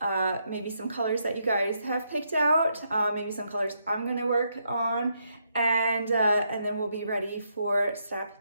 maybe some colors that you guys have picked out, maybe some colors I'm gonna work on, and then we'll be ready for step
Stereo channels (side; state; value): both; inverted; correlation -0.78